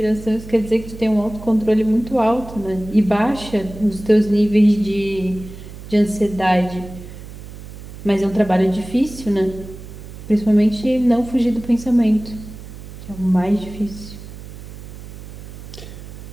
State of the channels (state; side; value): noise; right; hum, 14 dB below the sound